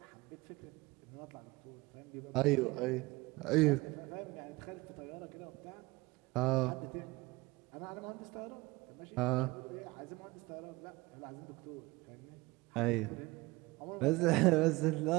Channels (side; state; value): left; quieter; 22.2 dB